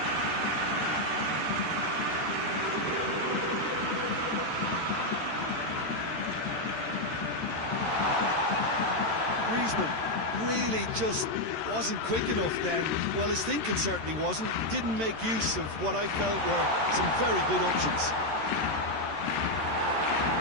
Griezmann really just wasn't quick enough then. Well, his thinking certainly wasn't. Didn't make use of what I felt were some very good options.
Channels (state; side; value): late; left; 13 ms